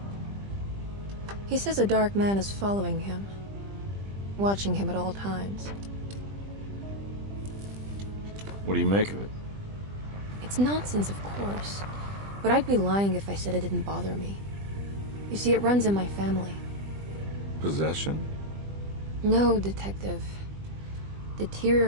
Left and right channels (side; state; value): left; late; 20 ms